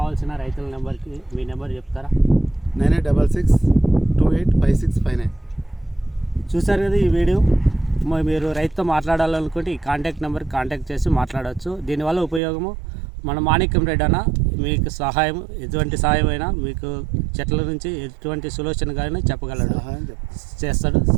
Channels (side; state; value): left; drops out; at 12.4 s